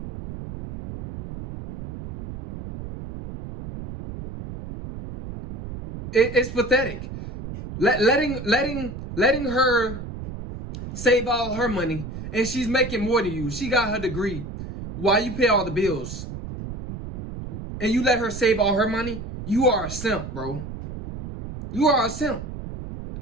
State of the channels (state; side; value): noise; right; rumble, 9 dB below the sound